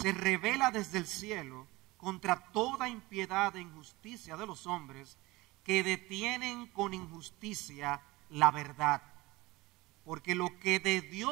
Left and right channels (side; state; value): left; quieter; 21.1 dB